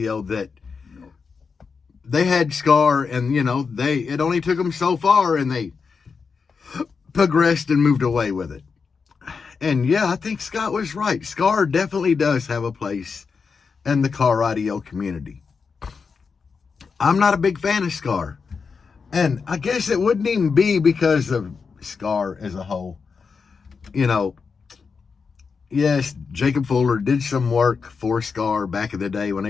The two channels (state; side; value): quieter; right; 5.3 dB